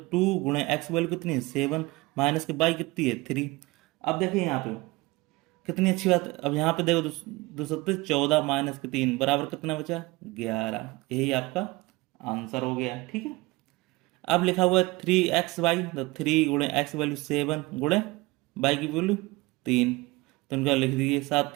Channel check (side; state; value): left; quieter; 22.3 dB